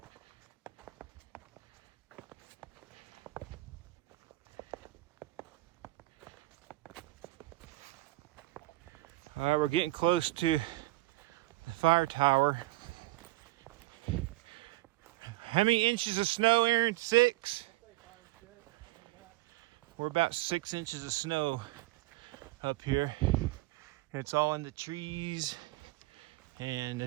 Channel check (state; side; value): quieter; left; 19.2 dB